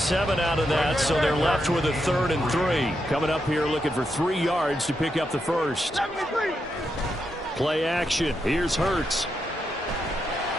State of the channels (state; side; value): normal; both; correlation 0.83